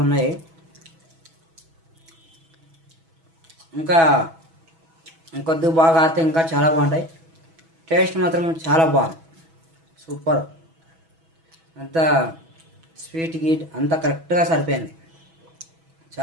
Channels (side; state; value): left; late; 6.1 ms